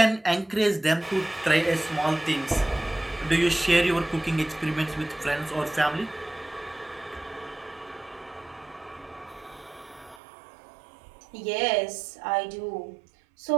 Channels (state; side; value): drops out; left; at 10.2 s